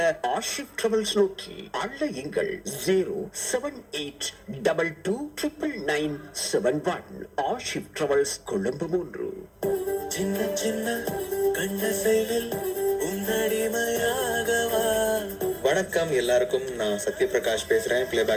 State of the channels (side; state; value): both; identical; correlation 1.00